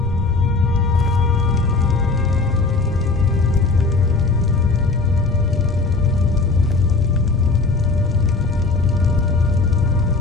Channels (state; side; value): quieter; right; 3.8 dB